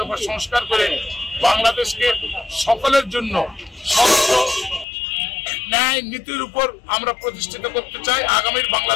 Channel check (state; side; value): drops out; right; at 4.9 s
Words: সংস্কার করে বাংলাদেশকে সকলের জন্য স্বচ্ছ ন্যায় নীতির উপর আমরা প্রতিষ্ঠিত করতে চাই। আগামীর